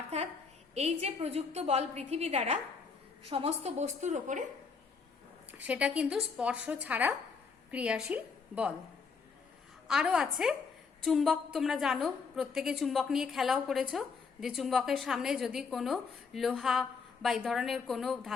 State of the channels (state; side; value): quieter; right; 5.2 dB